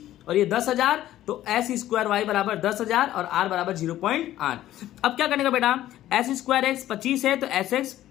और ये 10,000 तो एस स्क्वायर वाई बराबर 10,000 और आर बराबर 0.8। अब क्या करने का बेटा, एस स्क्वायर एक्स 25 है तो एस एक्स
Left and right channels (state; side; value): quieter; right; 13.6 dB